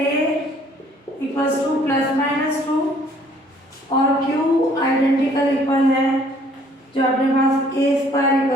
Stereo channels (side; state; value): both; normal; correlation 0.60